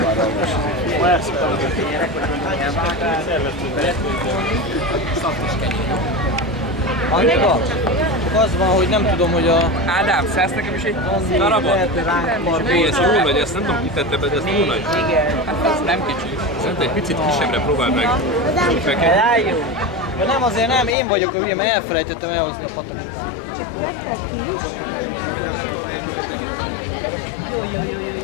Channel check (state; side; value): drops out; right; at 21.0 s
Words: Annika, csak az van, hogy nem tudom, hogy a... Ádám, szállsz nekem is egy darabot? Hé, ez jó nagy, ezt nem tudom kitette be, de ez jó nagy. Hát ez nem kicsi. Szerintem egy picit kisebbre próbáld meg. Rájön. Ja, nem, azért nem, én vagyok a hülye, mert elfelejtettem elhozni a patakot.